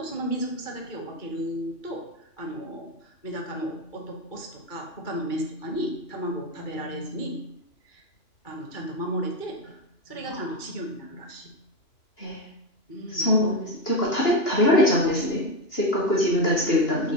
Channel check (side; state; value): right; late; 2.9 ms